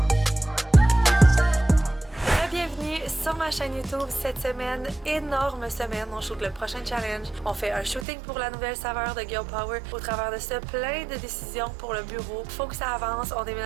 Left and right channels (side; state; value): left; drops out; at 8.1 s